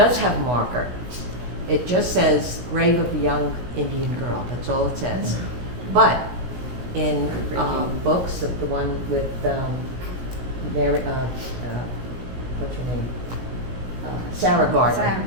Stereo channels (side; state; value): left; late; 17 ms